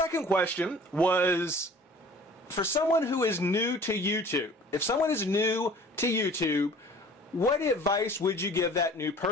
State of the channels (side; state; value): both; normal; correlation 0.48